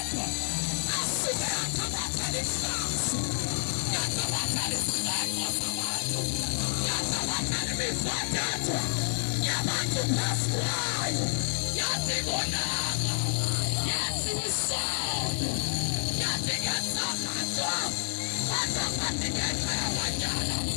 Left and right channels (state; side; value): silent; right; 58 dB below the other